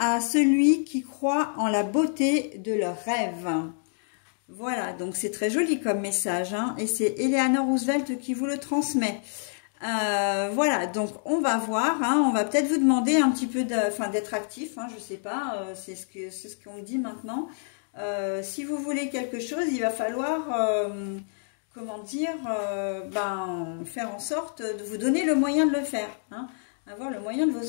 celui qui croit en la beauté de leurs rêves. Voilà, donc c'est très joli comme message, hein, et c'est Eleanor Roosevelt qui vous le transmet. Voilà, donc on va voir, hein, on va peut-être vous demander un petit peu d'être actif, hein, je sais pas, c'est ce qu'on me dit maintenant. Si vous voulez quelque chose, il va falloir... faire en sorte de vous donner le moyen de le faire, hein, avoir le moyen de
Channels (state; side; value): silent; right; digital silence